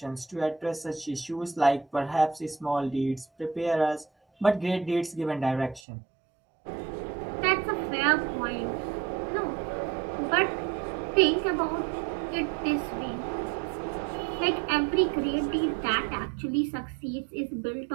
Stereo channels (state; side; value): drops out; left; at 5.8 s